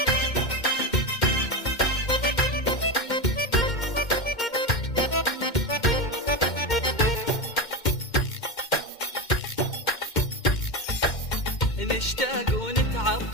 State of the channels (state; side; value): late; right; 2.1 ms